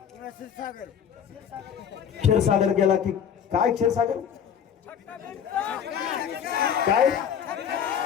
क्षीरसागर गेला की काय? क्षीरसागर काय?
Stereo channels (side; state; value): right; quieter; 8.3 dB